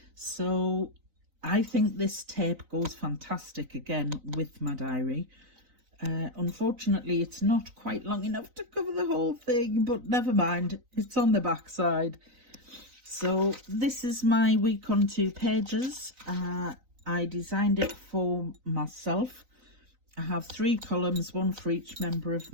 so I think this tape goes fantastic again with my diary. Unfortunately, it's not quite long enough to cover the whole thing, but never mind, it's on the back side. So this is my week on 2 pages. I designed it for myself. I have 3 columns, one for each member of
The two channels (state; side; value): late; left; 3.9 ms